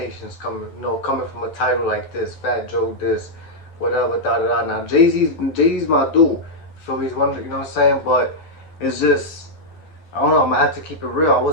coming from a title like this, Fat Joe this, whatever, da da da. Now Jay-Z's my dude. Feel me? He's one, you know what I'm saying? But it's just, I don't know, I'm gonna have to keep it real. I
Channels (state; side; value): late; right; 12 ms